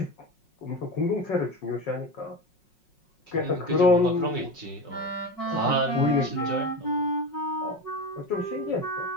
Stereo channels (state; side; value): late; right; 5.5 ms